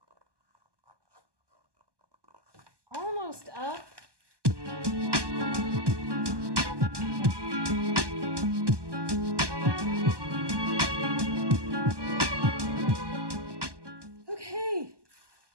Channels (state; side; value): late; left; 1.2 ms